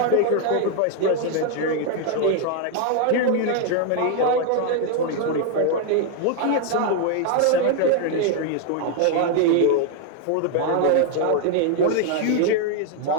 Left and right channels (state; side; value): different; both; correlation 0.00